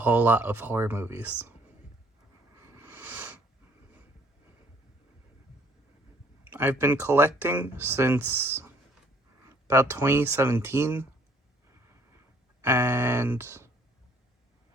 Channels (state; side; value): normal; both; correlation 0.61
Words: lot of horror movies. I've been collecting since about 2017, and